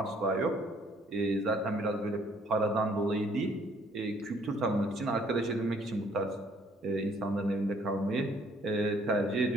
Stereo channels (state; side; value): normal; both; correlation 0.63